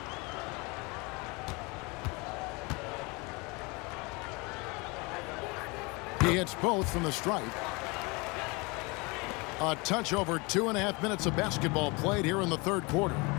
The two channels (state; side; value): quieter; right; 27.3 dB